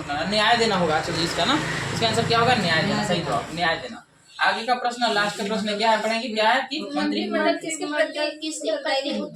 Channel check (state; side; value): identical; both; correlation 1.00